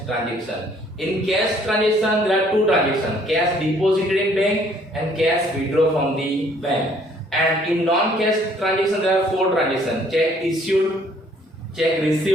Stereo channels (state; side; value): normal; both; correlation 0.62